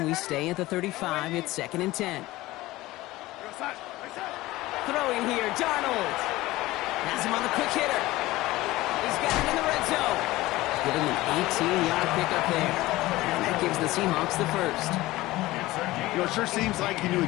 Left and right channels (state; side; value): quieter; right; 18.3 dB